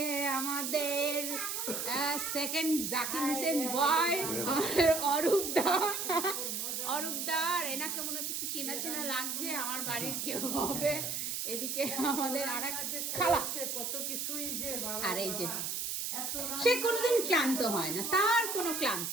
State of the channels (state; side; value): noise; right; hiss, 2 dB below the sound